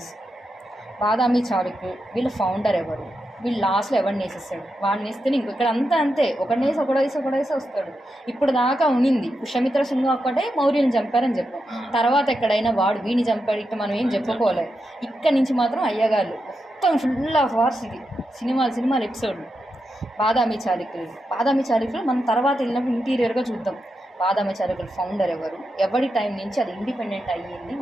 బాదామి చాళుక్యులు వీళ్ళ ఫౌండర్ ఎవరు? వీళ్ళు లాస్ట్లో ఎవరిని వేసేస్తాడు? వాడిని వేస్తే ఇంకో ఇక్కడ అంతా అంతే, ఒకడేసి వస్తాడు. ఇప్పుడు దాకా ఉనింది పుష్యమిత్ర సింగ్ ఒక్కటే మౌర్యుని చంపారని చెప్పాం. తర్వాత ఎక్కడైనా వాడు వీడిని చంపాడు ఇట్లా మనం ఏం చెప్పుకోలేదు. ఇక్కడ నుంచి మాత్రం అయ్యగాళ్ళు మొత్తం ఫుల్ ఆఫ్ వార్స్. ఇది సినిమాలు ఎపిసోడ్లు. బాదామి చాళుక్యులు మనం తర్వాత వెళ్ళినప్పుడు ఇంటీరియర్గా చూద్దాం. బాదామి చాళుక్యుల ఫౌండర్ ఎవరు, ఎవరి టైం నుంచి అది ఇండిపెండెంట్ అయ్యింది,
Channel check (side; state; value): both; normal; correlation 0.87